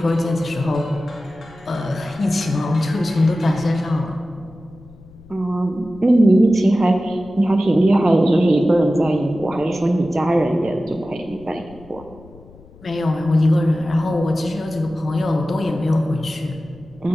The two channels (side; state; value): left; noise; rumble, 23 dB below the sound